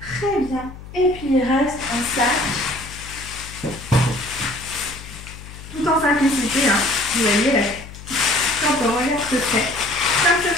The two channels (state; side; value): noise; left; hum, 15 dB below the sound